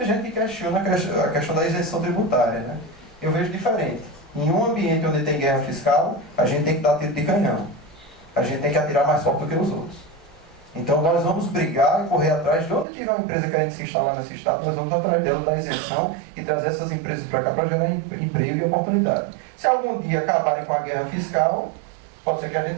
gente que questiona a questão da isenção tributária, né? Eu vejo diferente. Em um ambiente onde tem guerra fiscal, a gente tem que dar tiro de canhão. A gente tem que atirar mais forte do que os outros. Então nós vamos brigar e correr atrás de onde tiver uma empresa querendo se instalar nesse estado, nós vamos atrás dela da isenção e trazer essas empresas para cá para gerar emprego e oportunidade. Se algum dia acabarem com a guerra fiscal, pode ser que a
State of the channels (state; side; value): drops out; left; at 12.9 s